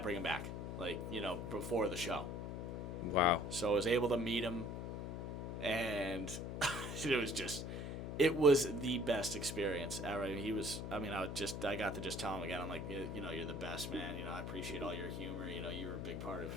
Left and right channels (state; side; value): noise; left; hum, 5 dB below the sound